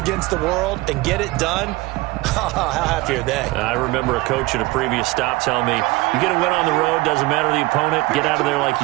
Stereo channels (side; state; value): left; quieter; 21.0 dB